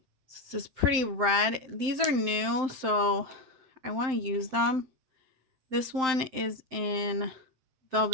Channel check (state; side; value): late; left; 7.7 ms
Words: This is pretty red. These are new, so I want to use them. This one is in